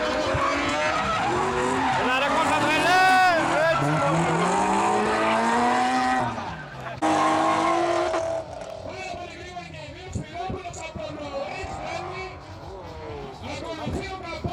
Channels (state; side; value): identical; both; correlation 1.00